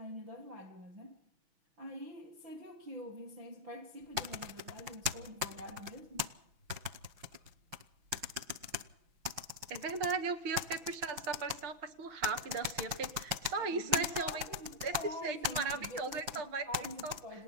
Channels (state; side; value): late; left; 6.1 ms